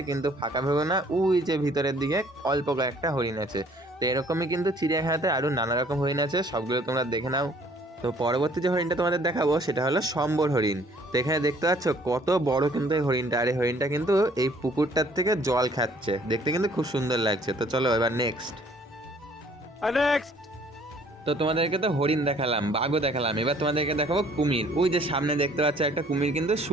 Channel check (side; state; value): both; normal; correlation 0.58